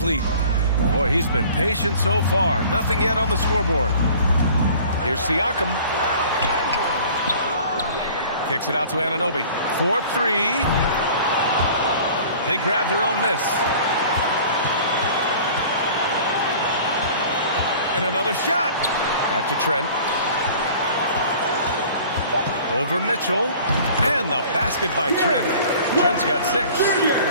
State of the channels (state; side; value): inverted; both; correlation -0.47